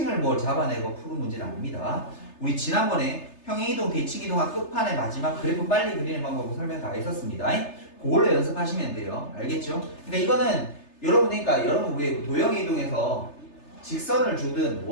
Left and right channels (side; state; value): right; late; 3.3 ms